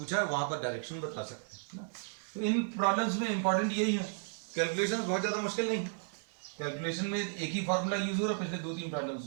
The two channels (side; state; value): left; silent; digital silence